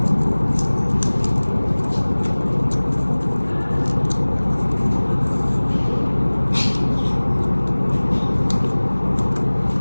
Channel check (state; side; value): inverted; both; correlation -1.00